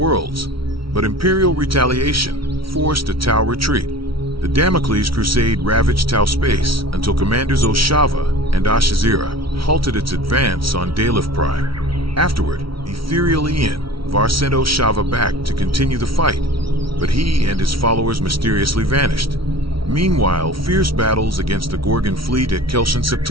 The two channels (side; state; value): left; late; 0.75 ms